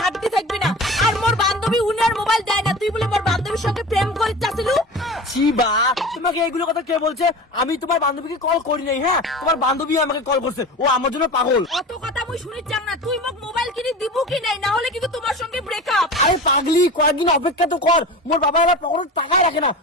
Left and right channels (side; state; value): both; normal; correlation 0.33